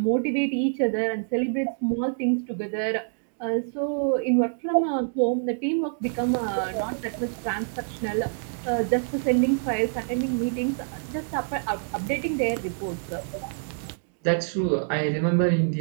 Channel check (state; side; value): silent; left; digital silence